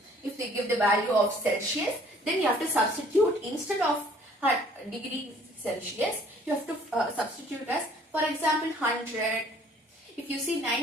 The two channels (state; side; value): normal; both; correlation 0.57